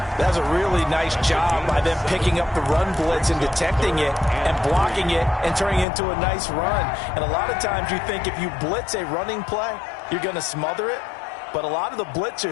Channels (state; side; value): drops out; right; at 5.9 s